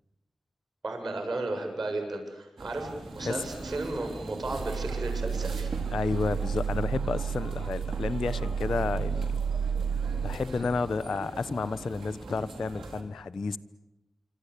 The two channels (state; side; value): normal; both; correlation 0.83